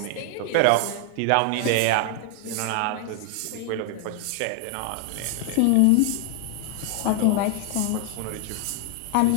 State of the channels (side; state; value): both; different; correlation 0.00